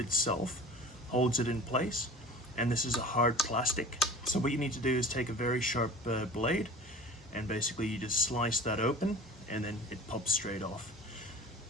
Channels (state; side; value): normal; both; correlation 0.40